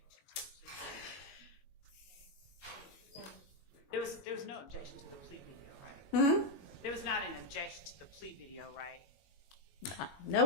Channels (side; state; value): right; late; 21 ms